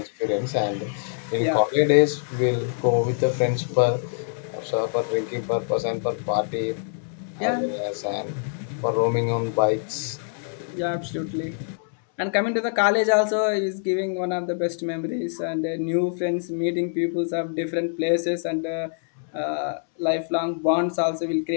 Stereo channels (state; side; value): silent; right; 62 dB below the other